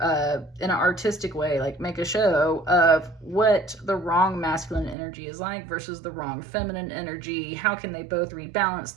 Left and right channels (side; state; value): left; drops out; at 5.0 s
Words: in an artistic way, like make a show of what the wrong masculine energy is like versus the wrong feminine energy. How can they both rebalance